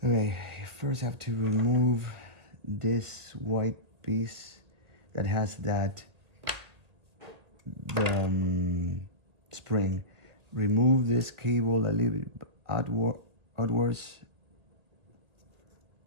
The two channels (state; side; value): late; left; 2.0 ms